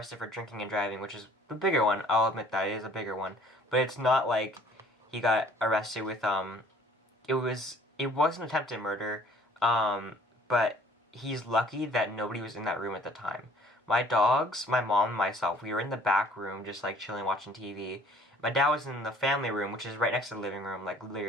for drinking and driving, which is the bigger one. I'll admit that it is a bigger one, but it's not like he got arrested with it wasn't attempted murder, but he's lucky that nobody was in that room at the time. My dogs, my mom, and myself, we were in the back room just like chilling, watching TV. My dad was in the family room, which is right next to the living room, like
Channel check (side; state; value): both; normal; correlation 0.56